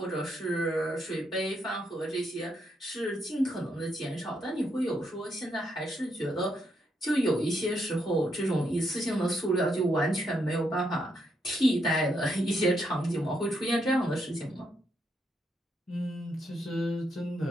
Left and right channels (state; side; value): normal; both; correlation 0.78